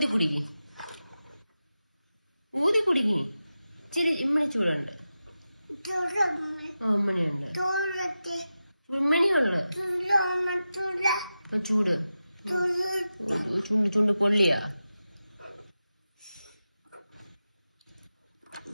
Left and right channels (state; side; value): inverted; both; correlation -0.92